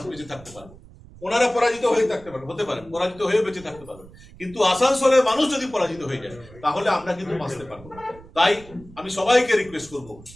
বেঁচে থাকতে পারবো, ওনারা পরাজিত হয়ে থাকতে পারবে, হতে পারে পরাজিত হয়ে বেঁচে থাকতে পারবে, কিন্তু আসানসোলের মানুষ যদি পরাজিত হয়ে যায় তাহলে আমরা কিন্তু বাঁচতে পারবো। তাই আমি সবাইকে রিকোয়েস্ট করব,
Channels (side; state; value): right; noise; rumble, 21 dB below the sound